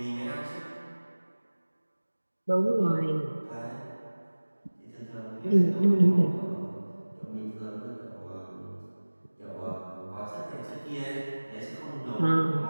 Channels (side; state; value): both; inverted; correlation -1.00